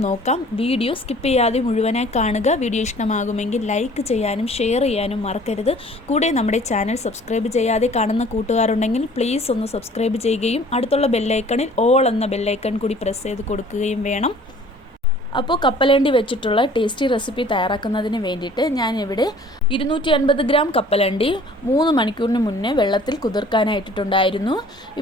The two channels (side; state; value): both; normal; correlation 0.51